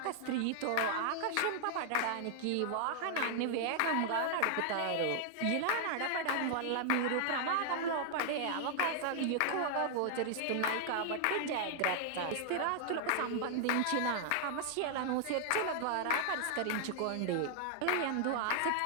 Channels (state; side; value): different; both; correlation 0.00